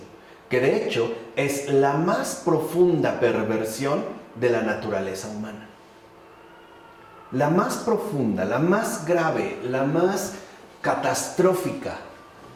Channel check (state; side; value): identical; both; correlation 1.00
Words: que de hecho es la más profunda perversión de la naturaleza humana. La más profunda, la más grave, la más catastrófica